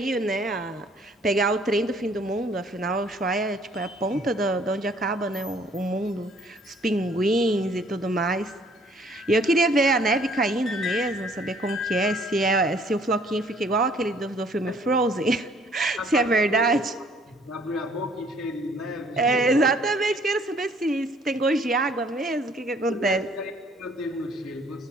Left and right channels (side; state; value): both; normal; correlation 0.60